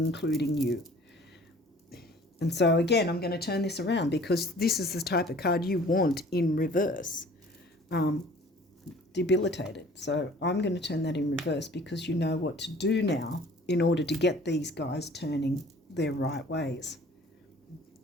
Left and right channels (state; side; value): normal; both; correlation 0.50